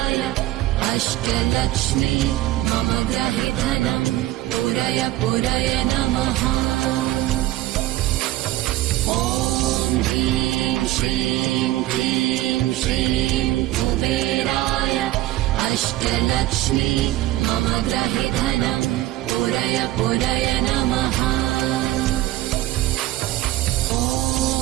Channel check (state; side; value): quieter; left; 15.8 dB